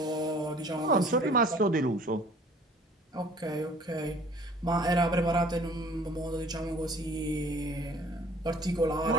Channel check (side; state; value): both; normal; correlation 0.51